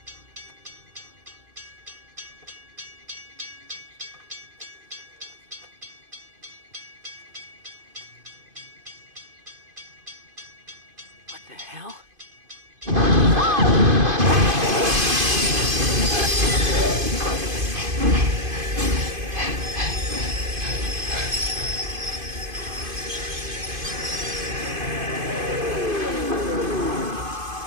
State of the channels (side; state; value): left; late; 2.5 ms